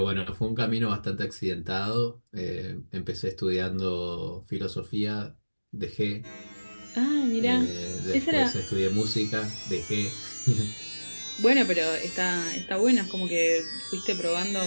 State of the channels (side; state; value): both; inverted; correlation -1.00